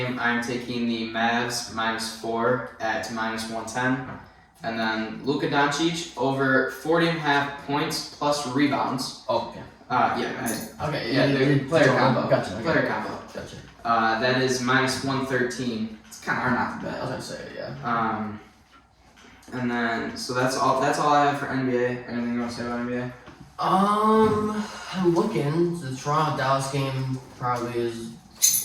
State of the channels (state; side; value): identical; both; correlation 1.00